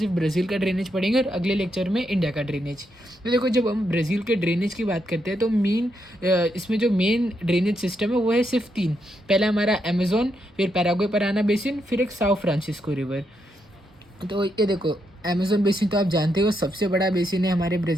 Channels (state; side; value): normal; both; correlation 0.80